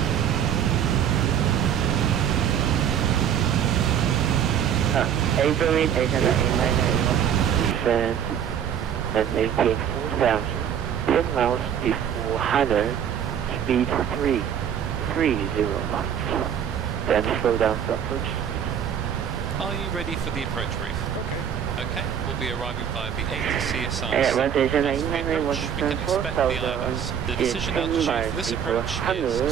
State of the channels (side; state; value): left; quieter; 8.8 dB